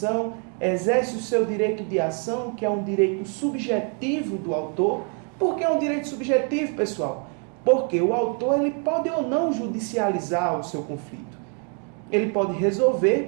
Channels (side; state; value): left; quieter; 39.4 dB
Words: exerce o seu direito de ação, que é um direito subjetivo do autor. Por que é um direito subjetivo, pessoal? Porque o autor ele pode ou não judicializar o seu conflito. Ele pode resolver,